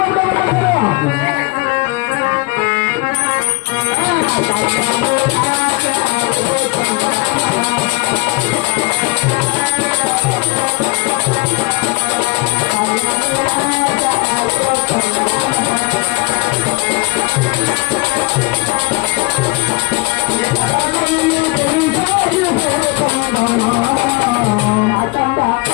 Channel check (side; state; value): right; quieter; 25.9 dB